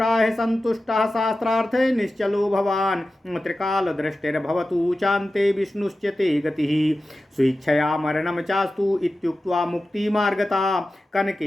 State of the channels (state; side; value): normal; both; correlation 0.94